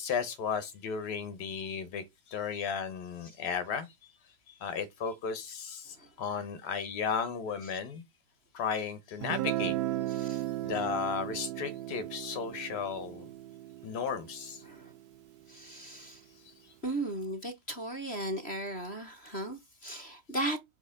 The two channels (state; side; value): late; right; 3.0 ms